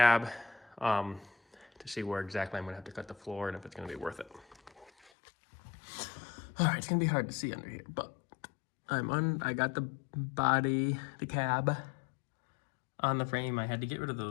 to see where exactly I'm gonna have to cut the floor and if it's gonna be worth it. All right, it's gonna be hard to see under here, but I got the body, the cab on the frame. I had to get rid of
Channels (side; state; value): right; drops out; at 5.1 s